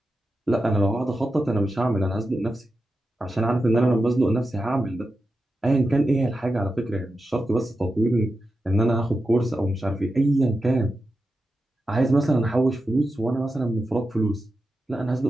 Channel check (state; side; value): normal; both; correlation 0.90